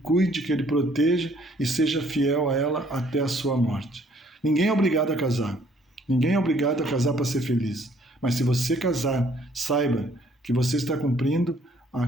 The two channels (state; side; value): normal; both; correlation 0.62